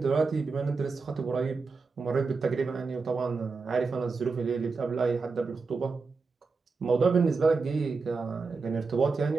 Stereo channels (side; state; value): left; quieter; 4.4 dB